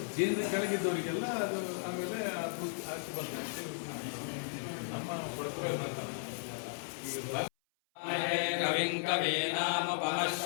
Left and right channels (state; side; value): silent; right; 54 dB below the other